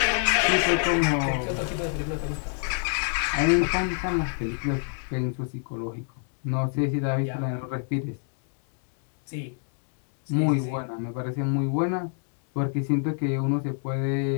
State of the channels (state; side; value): silent; right; 60 dB below the other